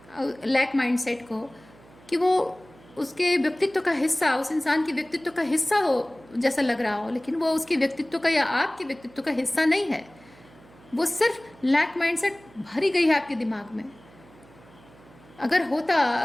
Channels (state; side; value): noise; right; hum, 25 dB below the sound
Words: लैक माइंडसेट को कि वो उसके व्यक्तित्व का हिस्सा, उस इंसान के व्यक्तित्व का हिस्सा हो जैसा लग रहा हो, लेकिन वो उसके व्यक्तित्व का या आपके व्यक्तित्व का हिस्सा नहीं है। वो सिर्फ लैक माइंडसेट भरी गई है आपके दिमाग में। अगर